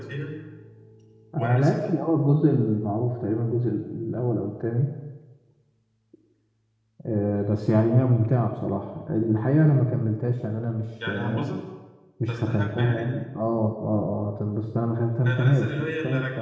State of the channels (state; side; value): identical; both; correlation 1.00